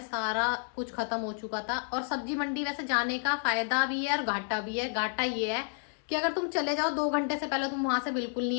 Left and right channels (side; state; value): right; silent; 57 dB below the other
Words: सारा कुछ खत्म हो चुका था। और सब्जी मंडी वैसे जाने का फायदा भी है और घाटा भी है। घाटा ये है कि अगर तुम चले जाओ 2 घंटे से पहले तुम वहां से बिल्कुल